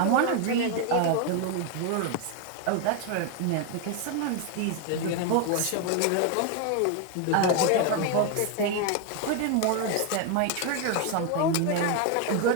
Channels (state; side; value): different; both; correlation 0.01